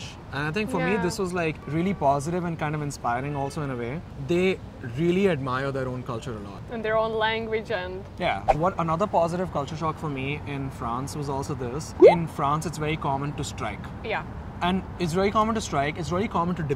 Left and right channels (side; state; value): both; identical; correlation 1.00